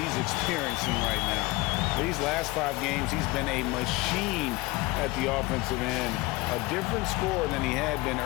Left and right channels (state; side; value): quieter; right; 21.7 dB